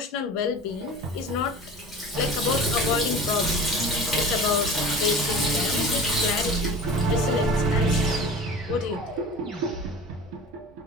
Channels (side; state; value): both; normal; correlation 0.37